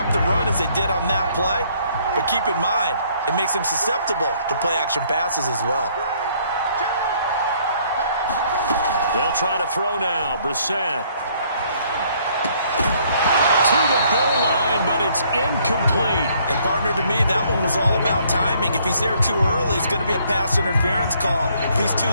the run as they did on that play. But keep in mind, it makes them susceptible to play-action passes as well. They'll try to throw now. Brissett. To the goal line, but it's incomplete. And, partner, to me, that one was all about timing. If he's there too early, it's going to be a pass interference call. If he's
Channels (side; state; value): both; inverted; correlation -0.64